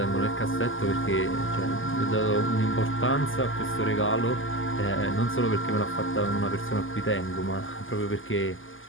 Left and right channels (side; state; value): right; late; 0.58 ms